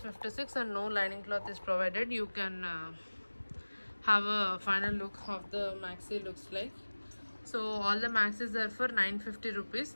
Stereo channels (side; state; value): both; inverted; correlation -1.00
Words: and no lining cloth is provided. You can have a final look of the maxi looks like. So all the maxis are for 950 rupees.